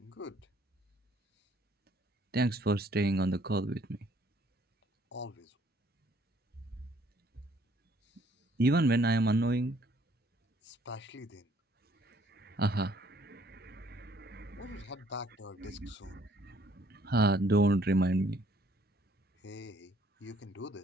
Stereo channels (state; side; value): normal; both; correlation 0.63